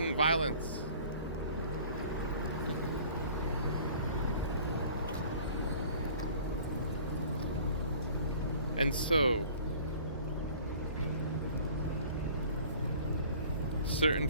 violence? And so, certain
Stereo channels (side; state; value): both; inverted; correlation -0.49